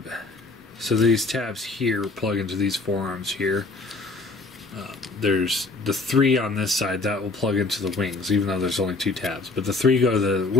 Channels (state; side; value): quieter; right; 3.6 dB